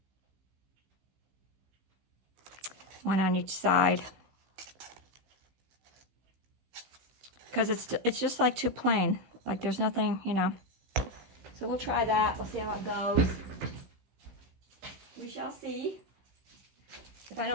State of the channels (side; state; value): left; late; 15 ms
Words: One on each side. because it's just like too plain. Like there's nothing, you know. So we'll try that. We'll see how it goes. We shall see. If I